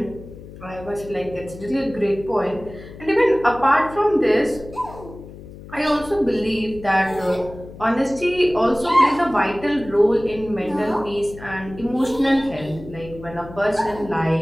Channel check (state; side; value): noise; left; hum, 16 dB below the sound